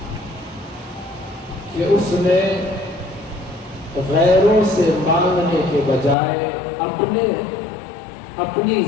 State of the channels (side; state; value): right; drops out; at 6.2 s